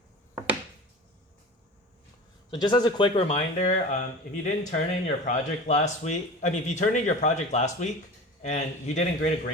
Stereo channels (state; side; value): normal; both; correlation 0.35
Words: So just as a quick reminder, if you didn't turn in your project last week, if you turned in your project last week and you didn't grade a